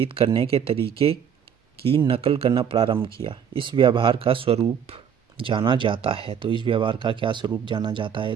करने के तरीके की नकल करना प्रारंभ किया। इस व्यवहार का स्वरूप जाना जाता है। तो इस व्यवहार का क्या स्वरूप जाना जाता है?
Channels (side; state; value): left; quieter; 8.0 dB